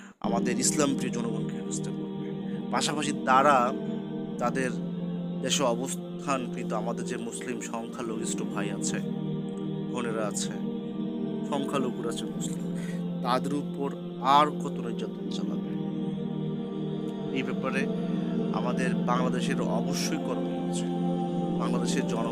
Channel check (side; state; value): both; identical; correlation 1.00